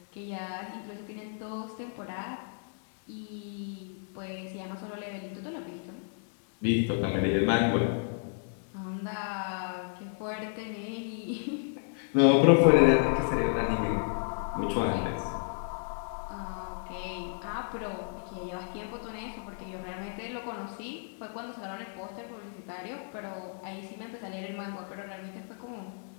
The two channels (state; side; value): silent; right; digital silence